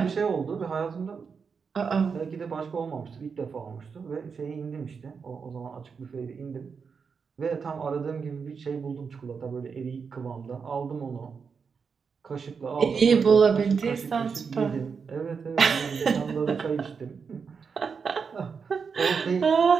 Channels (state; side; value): quieter; left; 5.7 dB